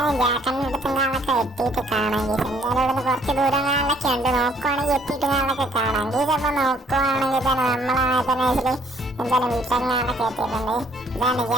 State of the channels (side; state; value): both; normal; correlation 0.63